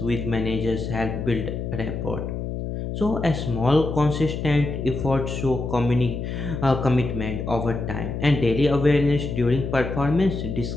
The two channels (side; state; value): left; noise; hum, 5 dB below the sound